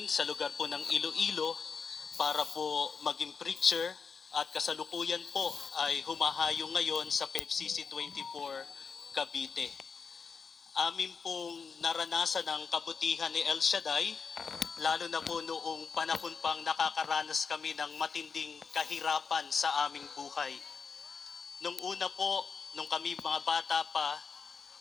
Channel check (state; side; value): quieter; right; 5.5 dB